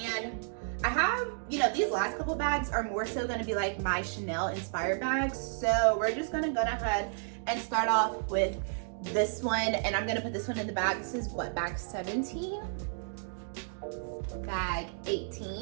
I have, you know, these last couple bags are more so going to be like my Chanel inspired bags. So we're just going to go ahead and start off with this one, and I'm going to put this one in the bag. This is what, bag 17? Bag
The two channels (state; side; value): silent; left; digital silence